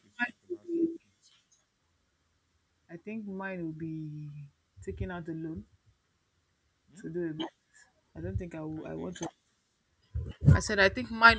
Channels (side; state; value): both; identical; correlation 1.00